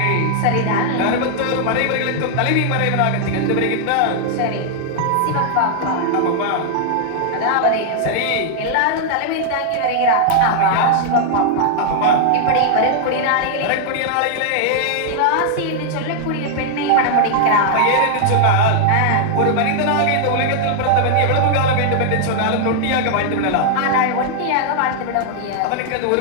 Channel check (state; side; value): different; both; correlation -0.01